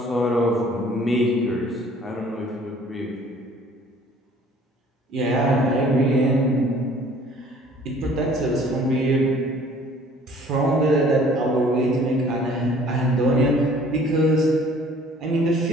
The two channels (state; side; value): normal; both; correlation 0.54